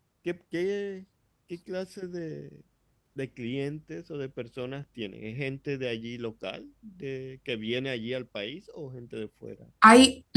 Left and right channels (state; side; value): identical; both; correlation 1.00